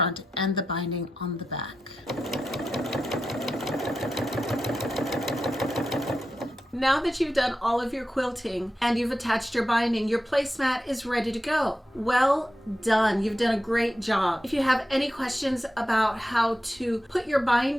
and the binding on the back. Now that you've done all of your quilting and you've attached your binding, your placemat is ready to go. Well done. You've done a great job. If you have any questions about how to put your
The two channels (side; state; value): both; normal; correlation 0.90